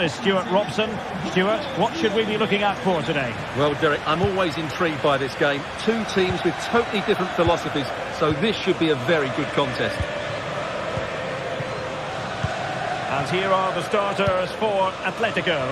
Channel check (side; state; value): both; identical; correlation 1.00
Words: Stuart Robson. Stuart, what should we be looking out for today? Well, Derek, I'm always intrigued by this game. Two teams with totally different philosophies, so this should be a very good contest. And here are the starters for